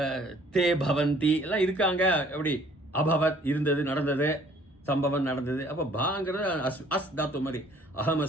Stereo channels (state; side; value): normal; both; correlation 0.57